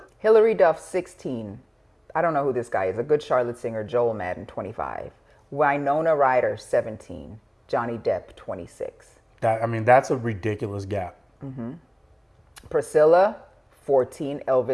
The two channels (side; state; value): both; identical; correlation 1.00